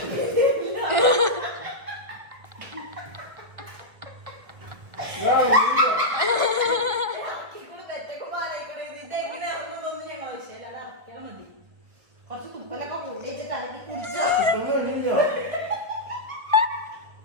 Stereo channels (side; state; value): left; late; 1.8 ms